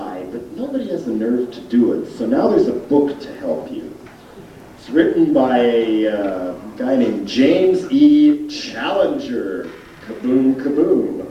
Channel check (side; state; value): both; identical; correlation 1.00